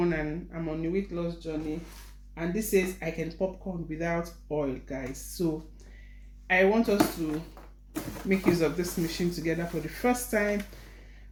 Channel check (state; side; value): identical; both; correlation 1.00